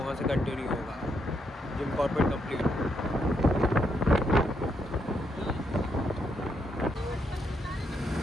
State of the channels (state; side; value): normal; both; correlation 0.78